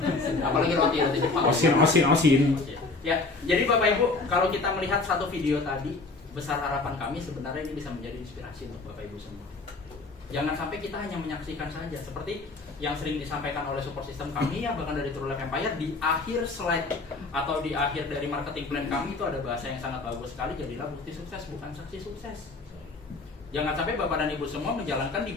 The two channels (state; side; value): quieter; right; 3.6 dB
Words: Apalagi roti Jepang. Osin. Ya, jadi Bapak Ibu, kalau kita melihat satu video tadi, besar harapan kami sebenarnya ini bisa menjadi inspirasi untuk Bapak Ibu semua. Jangan sampai kita hanya menyaksikan saja, seperti yang sering disampaikan oleh support system kami ya, bahkan dari True Life Empire, di akhir slide atau di akhir dari marketing plan kami itu ada bahasa yang sangat bagus sekali, jadilah bukti sukses bukan saksi sukses. Jangan sampai Bapak dan Ibu semua menjalankan